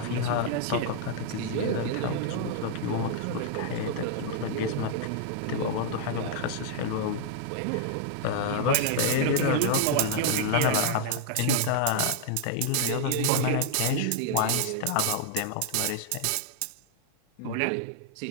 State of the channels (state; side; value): different; both; correlation -0.01